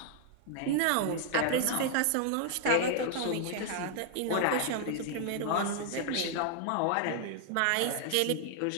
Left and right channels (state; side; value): different; both; correlation 0.00